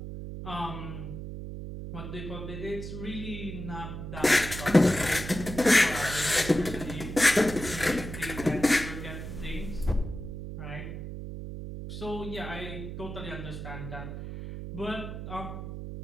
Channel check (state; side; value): noise; right; hum, 8 dB below the sound